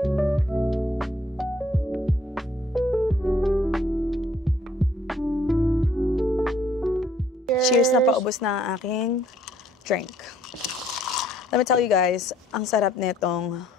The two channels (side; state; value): both; normal; correlation 0.63